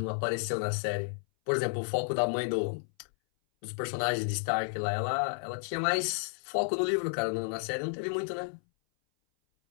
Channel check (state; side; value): silent; right; 57 dB below the other